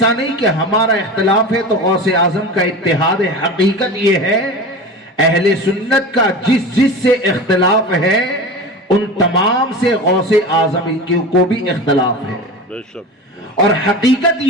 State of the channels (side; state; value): both; normal; correlation 0.31